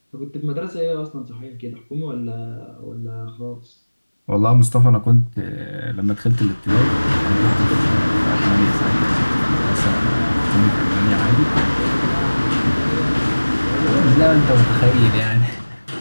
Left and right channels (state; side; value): inverted; both; correlation -1.00